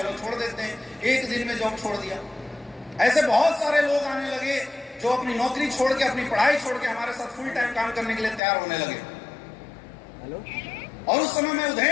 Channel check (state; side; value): drops out; right; at 8.4 s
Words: छोड़ देते हैं। 1 दिन में जॉब छोड़ दिया। ऐसे बहुत सारे लोग आने लगे जो अपनी नौकरी छोड़ के, अपनी पढ़ाई छोड़ के हमारे साथ फुल टाइम काम करने के लिए तैयार होने लगे। और उस समय मैं